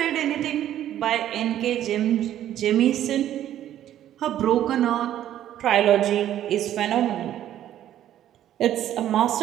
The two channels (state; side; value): quieter; left; 11.8 dB